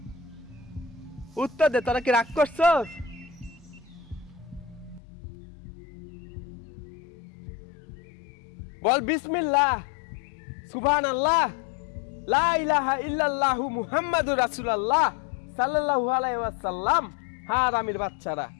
উত্তর দে, তোরা কি রাগ করছস? বল বিসমিল্লাহ, সুবহানাল্লাহ, লা ইলাহা ইল্লাল্লাহু মুহাম্মাদুর রাসূলুল্লাহ সাল্লাল্লাহু আলাইহি ওয়াসাল্লাম। হারামির বাচ্চারা,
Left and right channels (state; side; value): drops out; right; at 5.0 s